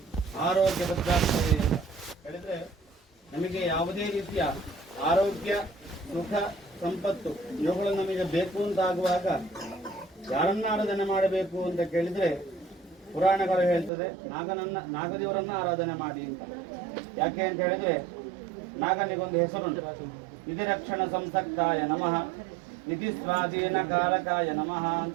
ಆರೋಗ್ಯ ಭದ್ರಾಸ್ತವೇ ಅಂತ ಹೇಳಿದರೆ, ನಮಗೆ ಯಾವುದೇ ರೀತಿಯ ಆರೋಗ್ಯ, ಸುಖ, ಸಂಪತ್ತು ಇವುಗಳು ನಮಗೆ ಬೇಕು ಅಂತ ಆಗುವಾಗ ಯಾರನ್ನ ಆರಾಧನೆ ಮಾಡಬೇಕು ಅಂತ ಕೇಳಿದರೆ ಪುರಾಣಗಳು ಹೇಳ್ತದೆ ನಾಗದೇವರನ್ನ ಆರಾಧನೆ ಮಾಡಿ ಅಂತ. ಯಾಕೆ ಅಂತ ಹೇಳಿದ್ರೆ ನಾಗನಿಗೊಂದು ಹೆಸರುಂಟು, ನಿಧಿ ರಕ್ಷಣ ಸಂಸಕ್ತಾಯ ನಮಃ, ನಿಧಿ ಸ್ವಾಧೀನ ಕಾರಕಾಯ ನಮಃ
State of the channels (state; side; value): drops out; left; at 13.9 s